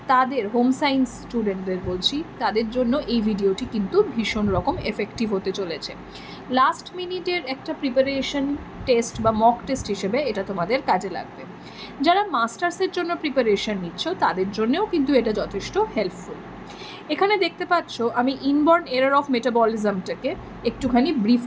তাদের হোম সায়েন্স স্টুডেন্টদের বলছি, তাদের জন্য এই ভিডিওটি কিন্তু ভীষণ রকম এফেক্টিভ হতে চলেছে। লাস্ট মিনিটের একটা প্রিপারেশন টেস্ট বা মক টেস্ট হিসেবে এটা তোমাদের কাজে লাগবে। যারা মাস্টার্সের জন্য প্রিপারেশন নিচ্ছ তাদের জন্যও কিন্তু এটা যথেষ্ট হেল্পফুল। এখানে দেখতে পাচ্ছ আমি ইনবর্ন এরর অফ মেটাবলিজমটাকে একটুখানি ব্রিফ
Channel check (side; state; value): both; identical; correlation 1.00